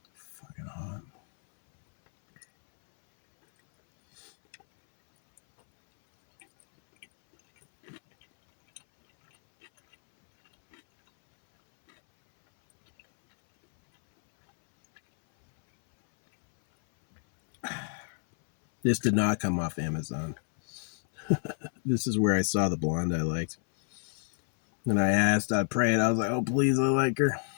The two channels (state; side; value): silent; right; 59 dB below the other